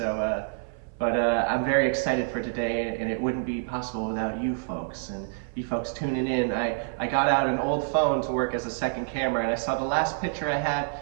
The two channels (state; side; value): silent; left; 57 dB below the other